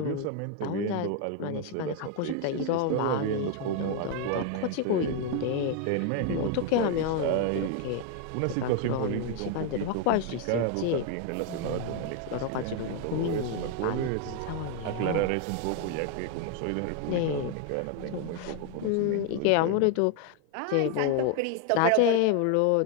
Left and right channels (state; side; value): different; both; correlation 0.01